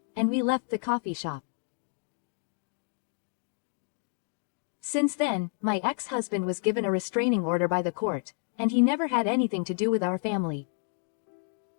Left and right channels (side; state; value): right; silent; 58 dB below the other